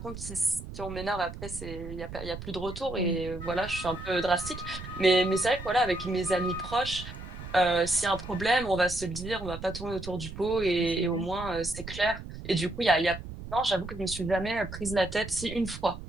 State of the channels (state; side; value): noise; right; rumble, 11 dB below the sound